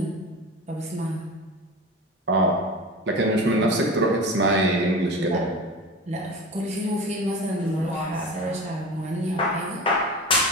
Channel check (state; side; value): normal; both; correlation 0.32